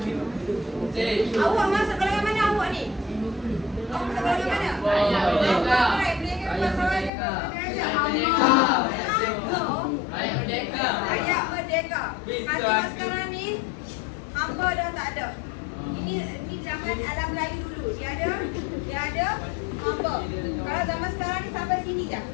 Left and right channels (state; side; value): drops out; right; at 7.1 s